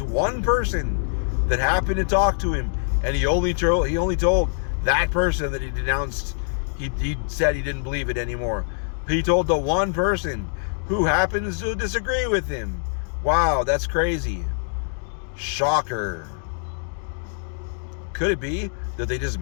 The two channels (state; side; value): silent; right; digital silence